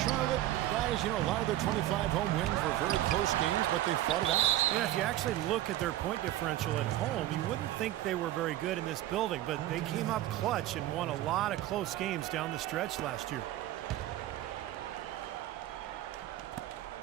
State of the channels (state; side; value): quieter; left; 14.2 dB